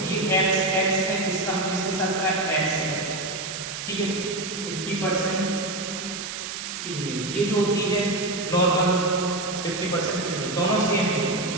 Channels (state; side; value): noise; right; hiss, 7 dB below the sound